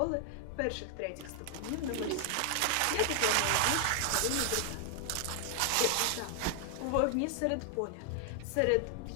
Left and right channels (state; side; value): different; both; correlation 0.00